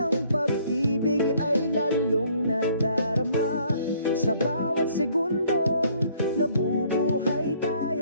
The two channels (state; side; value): inverted; both; correlation -0.62